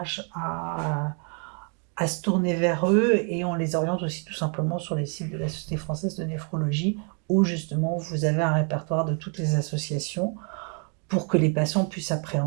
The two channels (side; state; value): left; quieter; 39.2 dB